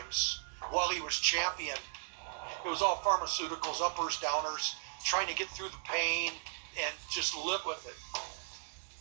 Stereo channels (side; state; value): left; silent; digital silence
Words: while he was champion. It was all pharmaceuticals, uppers, downers, trying to get through the pain and just live with it.